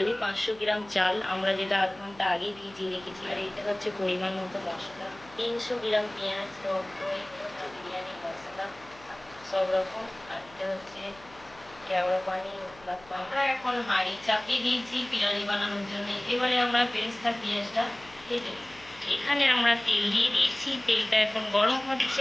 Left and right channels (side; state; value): left; noise; hum, 24 dB below the sound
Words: 500 গ্রাম চাল আমরা যেটা আধ ঘন্টা আগে ভিজিয়ে রেখেছি, আর এটা হচ্ছে পরিমাণ মতো মশলা, 300 গ্রাম পেঁয়াজ, টক দই, বিরিয়ানি মশলা সব রকম, আর এটা হচ্ছে কেওড়া পানি। আমরা এখন হাঁড়ি চাপিয়ে দিয়েছি বিরিয়ানি বানানোর জন্য। এবারে আমরা বেরেস্তা পেঁয়াজটা ভেজে নেব। এখানে আমরা তেল দিয়ে দিয়েছি, তেলটা এখন গরম